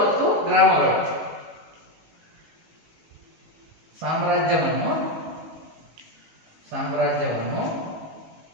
ಮತ್ತು ಗ್ರಾಮಗಳು. ಸಾಮ್ರಾಜ್ಯವನ್ನು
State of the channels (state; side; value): late; left; 19 ms